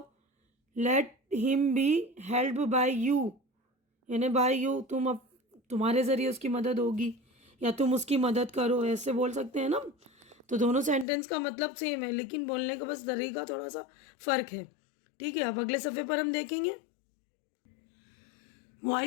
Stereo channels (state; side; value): drops out; right; at 11.1 s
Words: Late him B help by you, यानी बाय यू तुम्हारे ज़रिए उसकी मदद होगी, या तुम उसकी मदद करो, ऐसे बोल सकते हैं ना। तो दोनों सेंटेंस का मतलब सेम है, लेकिन बोलने का बस तरीका थोड़ा सा फ़र्क है। ठीक है। अब अगले सफ़े पर हम देखेंगे